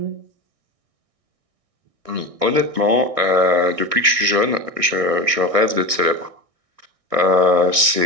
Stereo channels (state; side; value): late; left; 1.6 ms